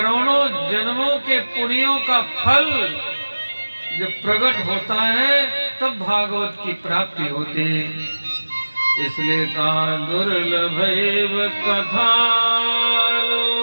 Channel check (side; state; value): both; inverted; correlation -1.00